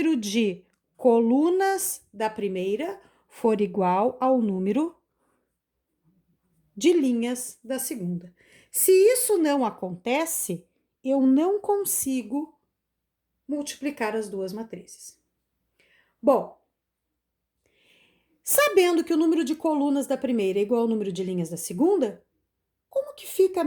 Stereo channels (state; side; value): identical; both; correlation 1.00